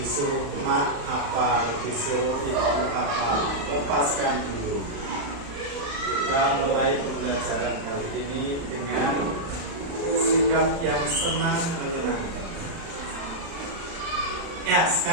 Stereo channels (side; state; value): left; late; 35 ms